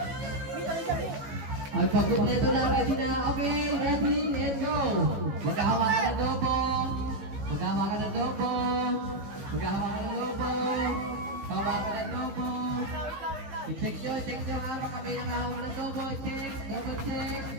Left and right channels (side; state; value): left; late; 15 ms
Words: Ay, pag-kompleto na, ready na. Okay, ready, and go. Maghahawakan ng lobo. Maghahawakan ng lobo. Maghahawakan ng lobo. Hawakan ng lobo. I-check nyo ha. Baka may nakahawak ng lobo. Check, double check.